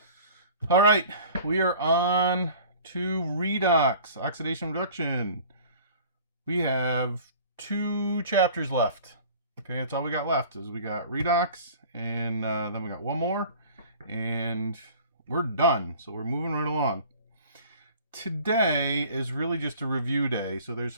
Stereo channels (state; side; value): inverted; both; correlation -0.45